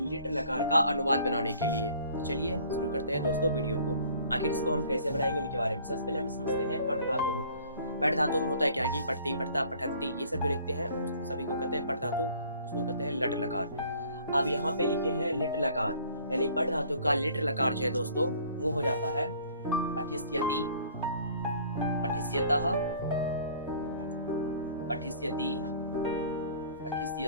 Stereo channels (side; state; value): both; inverted; correlation -0.53